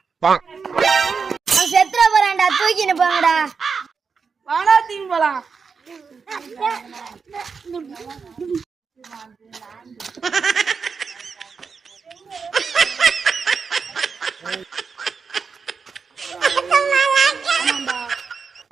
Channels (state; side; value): quieter; left; 5.4 dB